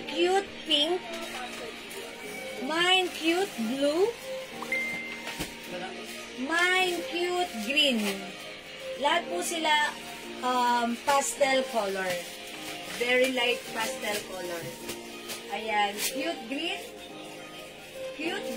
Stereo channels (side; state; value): both; identical; correlation 1.00